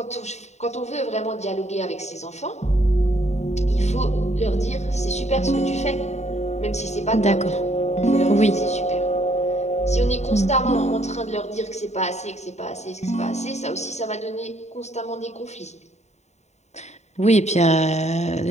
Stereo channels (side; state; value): right; late; 0.32 ms